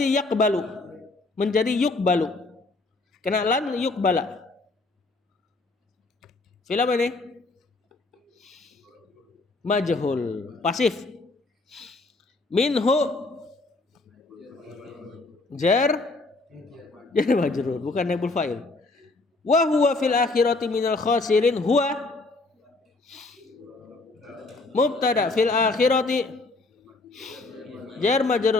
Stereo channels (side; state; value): right; quieter; 3.3 dB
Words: yaqbalu menjadi yuqbalu, kena lan yuqbala. Fi'il apa ini? Majhul, pasif. Minhu jar majrur, bukan naibul fa'il. Wa huwa fil akhirati minal khasirin, huwa mubtada, fil akhirati jar